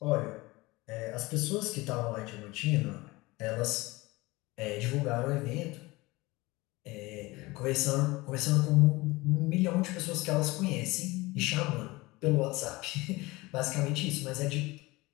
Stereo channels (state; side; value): quieter; right; 21.7 dB